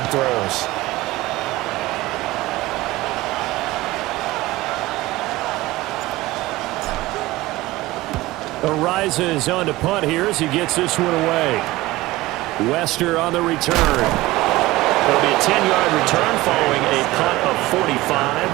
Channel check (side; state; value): left; quieter; 18.7 dB